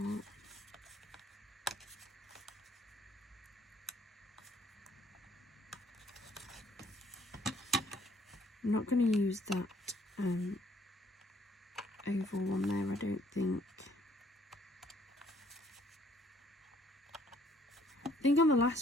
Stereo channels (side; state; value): both; normal; correlation 0.63